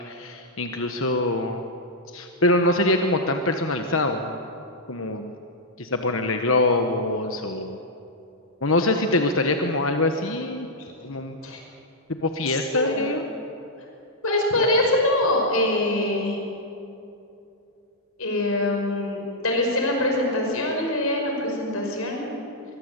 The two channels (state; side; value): normal; both; correlation -0.07